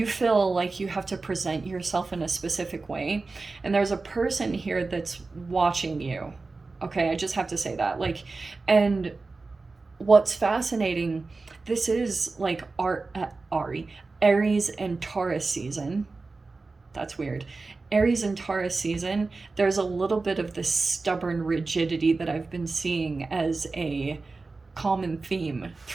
feel like you have to present yourself in a specific way. And there's a person here that's watching you. Okay, I just have to say that. Like, and what's fascinating, this is like Aries and Taurus season. That's weird. Aries and Taurus season, there's a little bit of this stubborn rigidity that I've been seeing as a common theme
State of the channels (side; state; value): left; quieter; 3.8 dB